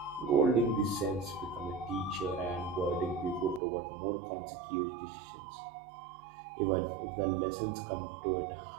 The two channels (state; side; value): drops out; left; at 3.6 s